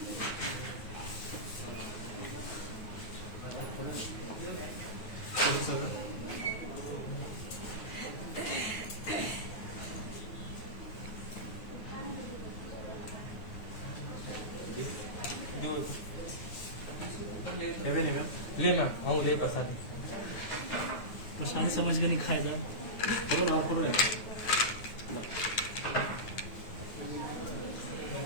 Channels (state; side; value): late; right; 9.3 ms